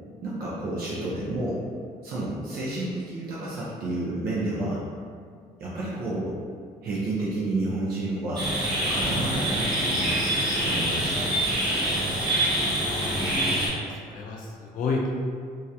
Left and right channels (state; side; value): normal; both; correlation 0.35